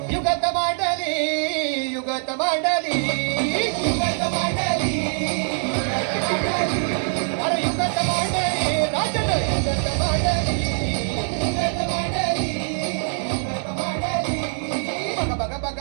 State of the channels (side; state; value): left; silent; digital silence